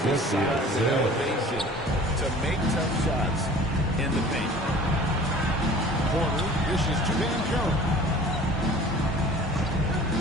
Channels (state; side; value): normal; both; correlation 0.46